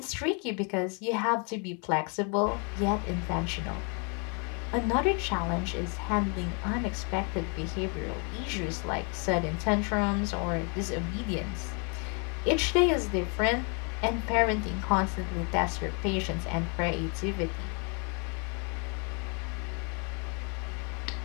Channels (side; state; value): right; quieter; 36.2 dB